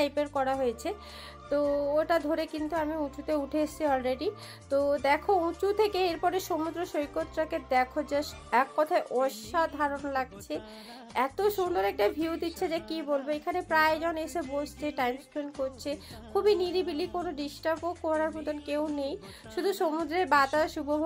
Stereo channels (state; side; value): identical; both; correlation 1.00